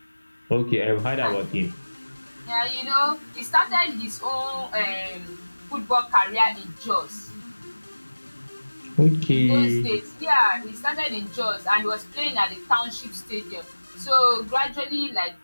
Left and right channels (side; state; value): both; inverted; correlation -1.00